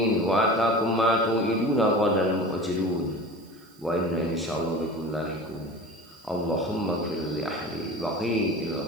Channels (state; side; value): noise; right; hiss, 28 dB below the sound